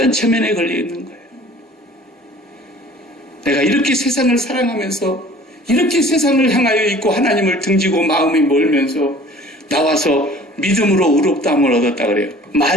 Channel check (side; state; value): both; normal; correlation 0.48